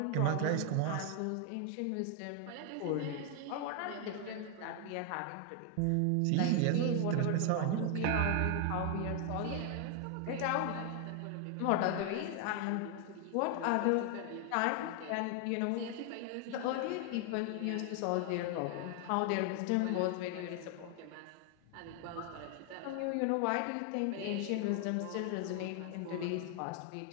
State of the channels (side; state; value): both; different; correlation 0.00